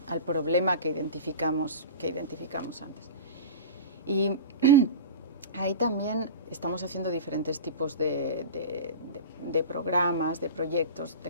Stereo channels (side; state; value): both; inverted; correlation -0.31